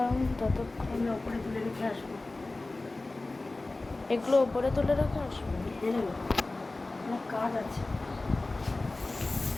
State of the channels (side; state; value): right; quieter; 3.1 dB